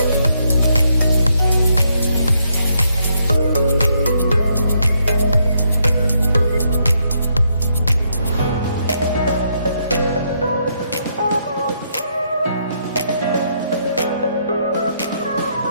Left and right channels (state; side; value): inverted; both; correlation -0.75